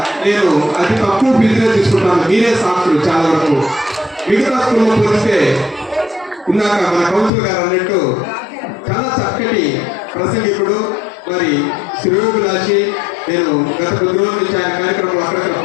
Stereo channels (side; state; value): right; drops out; at 7.3 s